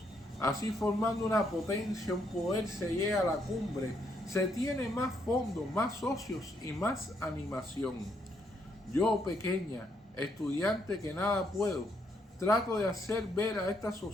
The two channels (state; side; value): normal; both; correlation 0.74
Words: Así, formando una potencia, un poder, se llega a la cumbre. Se tiene más fondos, más socios y más animación. Yo, pequeña, estudiante que nada puedo, trato de hacer ver a estas